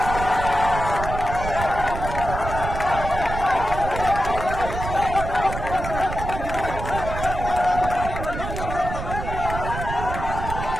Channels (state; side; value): noise; right; rumble, 6 dB below the sound